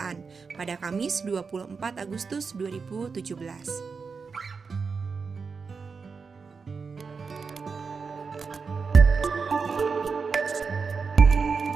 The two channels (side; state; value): left; quieter; 5.1 dB